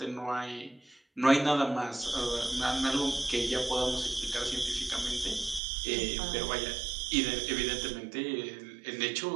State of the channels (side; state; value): left; drops out; at 5.6 s